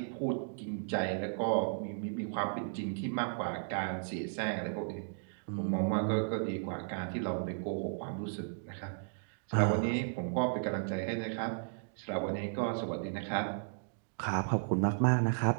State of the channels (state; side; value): silent; left; digital silence